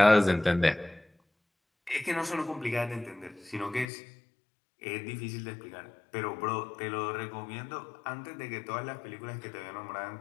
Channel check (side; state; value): right; drops out; at 3.9 s